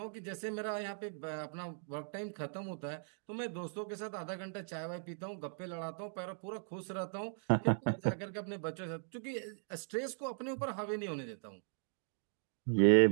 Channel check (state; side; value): silent; left; digital silence